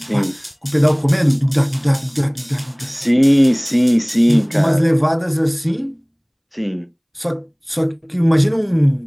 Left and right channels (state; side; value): identical; both; correlation 1.00